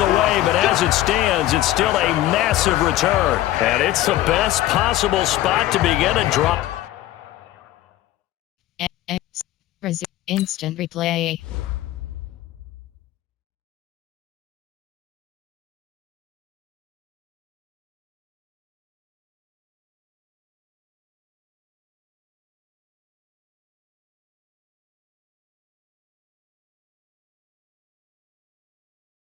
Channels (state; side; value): quieter; right; 14.7 dB